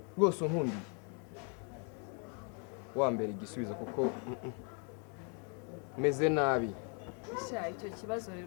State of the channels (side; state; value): right; quieter; 38.7 dB